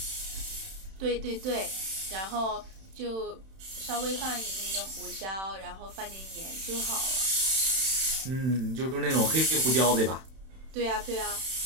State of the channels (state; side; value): late; left; 31 ms